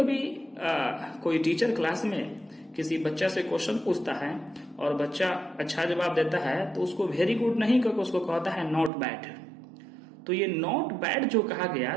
कोई टीचर क्लास में किसी बच्चा से क्वेश्चन पूछता है और बच्चा अच्छा जवाब देता है तो उसको वेरी गुड नहीं करके उसको कहता है नॉट बैड। तो ये नॉट बैड जो कहा गया,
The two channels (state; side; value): drops out; left; at 8.9 s